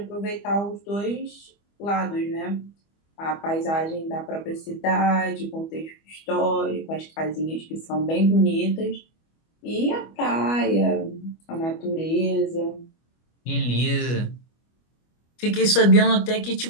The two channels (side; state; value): right; late; 25 ms